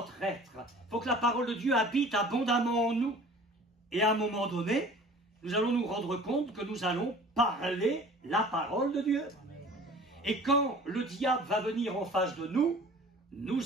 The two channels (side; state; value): both; normal; correlation 0.46